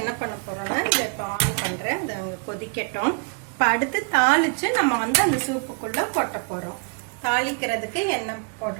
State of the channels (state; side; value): quieter; left; 38.1 dB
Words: பண்ண போறோம்னா, இதை இப்போ ஆன் பண்றேன், அதை அங்கே கொதிக்கட்டும். இப்போ அடுத்து தாளிச்சு நம்ம வந்து அந்த சூப்புக்குள்ள கொட்ட போறோம். தாளிக்கிறதுக்கு எண்ணெய்